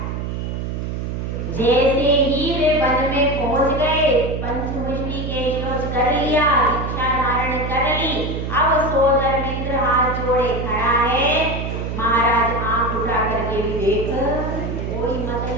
जैसे ही वे वन में पहुंच गए, पंचमुष्टि के श्लोक कर लिया, दीक्षा धारण कर ली। अब सौदर मित्र हाथ जोड़े खड़ा है। महाराज आंख उठा करके भी देख, कोई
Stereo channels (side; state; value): right; noise; hum, 4 dB below the sound